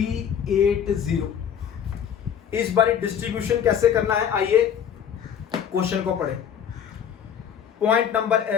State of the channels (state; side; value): quieter; right; 8.5 dB